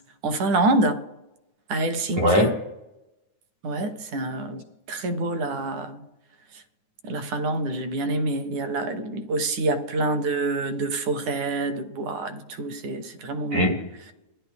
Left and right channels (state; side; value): late; left; 9.5 ms